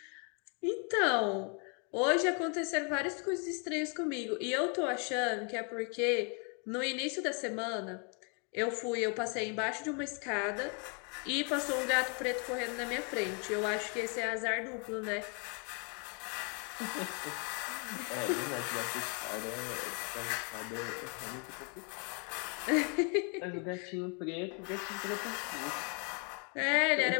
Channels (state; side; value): quieter; right; 37.0 dB